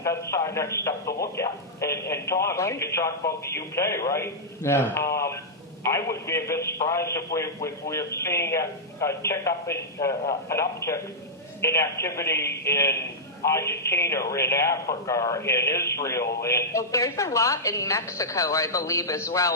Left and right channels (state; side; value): normal; both; correlation -0.11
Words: That's our next step to look at. And Tom, Right. you can talk about the UK, right? Yeah. I would be a bit surprised if we're seeing an uptick in activity in Argentina, or in Africa, or in Israel, Well, there's a lot in Mexico, I believe, as